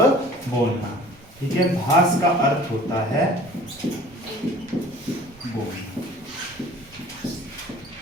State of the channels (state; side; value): noise; right; rumble, 26 dB below the sound